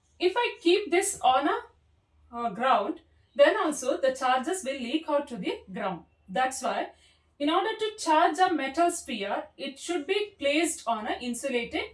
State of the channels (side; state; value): both; identical; correlation 1.00